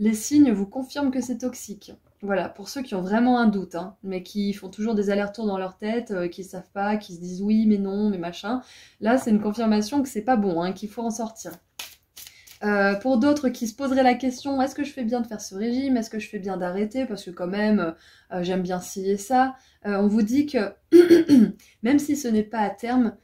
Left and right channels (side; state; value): both; identical; correlation 1.00